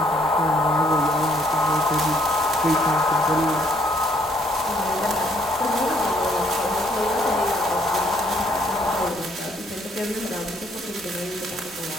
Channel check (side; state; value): both; normal; correlation 0.67